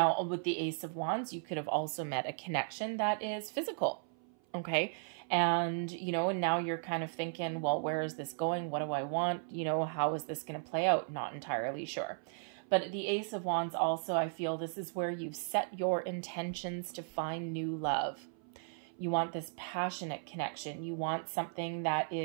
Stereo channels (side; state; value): left; silent; 54 dB below the other